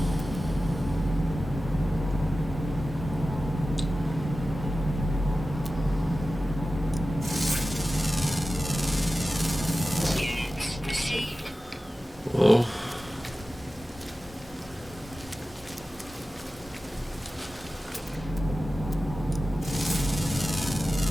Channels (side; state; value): both; normal; correlation 0.95